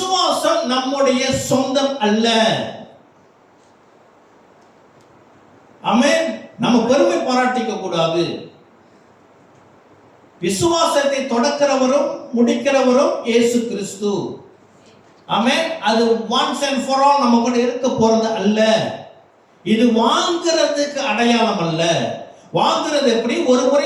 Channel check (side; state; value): both; identical; correlation 1.00